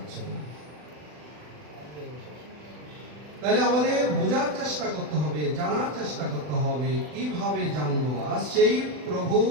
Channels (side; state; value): left; late; 40 ms